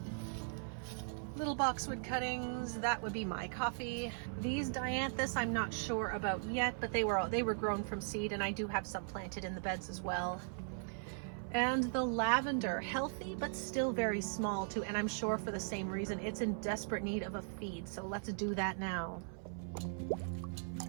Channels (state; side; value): silent; left; 52 dB below the other